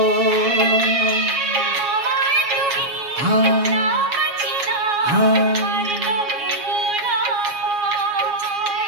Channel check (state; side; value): late; left; 7.2 ms